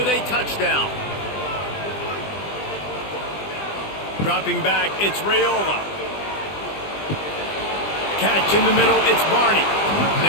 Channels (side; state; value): right; late; 20 ms